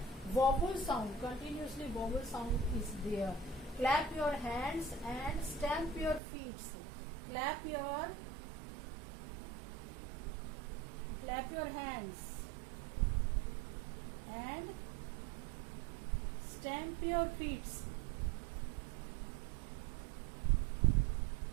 vowel sound, continuously vowel sound is there. Clap your hands and stamp your feet. Clap your hands and stamp your feet.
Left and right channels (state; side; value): drops out; left; at 6.2 s